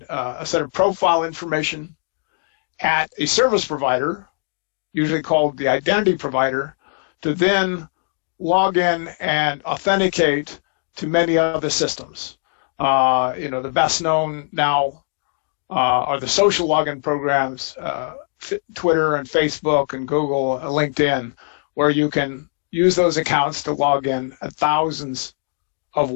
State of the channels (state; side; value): silent; right; digital silence